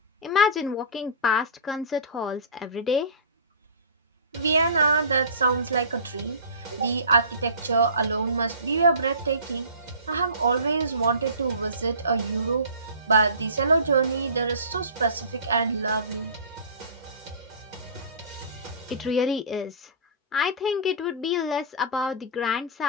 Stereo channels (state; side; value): inverted; both; correlation -0.35